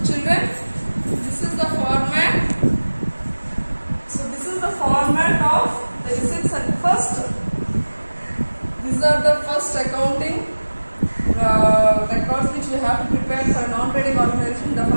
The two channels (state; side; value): inverted; both; correlation -1.00